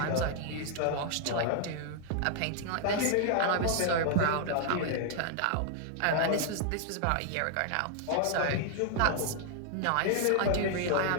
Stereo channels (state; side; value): different; both; correlation 0.00